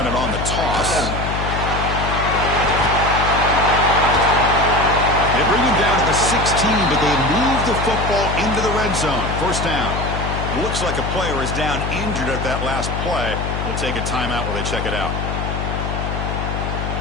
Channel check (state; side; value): noise; left; hum, 3 dB below the sound